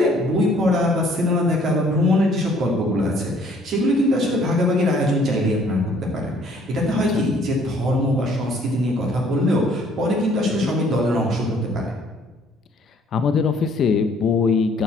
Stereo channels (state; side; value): normal; both; correlation 0.60